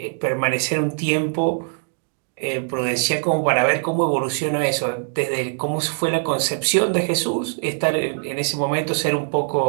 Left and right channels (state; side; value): silent; left; digital silence